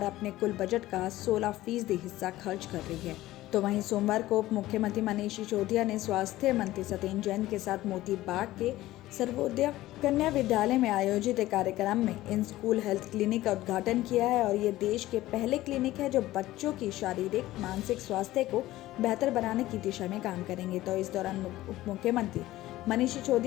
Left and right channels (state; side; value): quieter; right; 16.2 dB